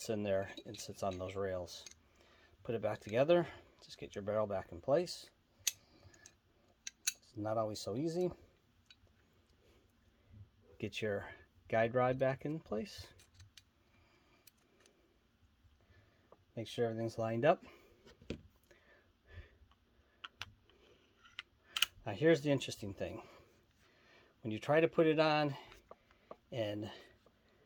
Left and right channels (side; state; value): both; identical; correlation 1.00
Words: in there and sits on those rails. Put it back together. Just get your barrel back in place. It's not always so easy. Get your guide rod back in place. Make sure everything's lined up. Now here's the interesting thing. When you try to put it on and